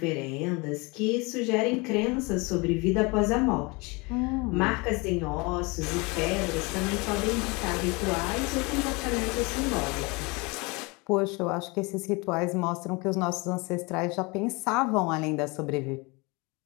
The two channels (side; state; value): right; quieter; 27.2 dB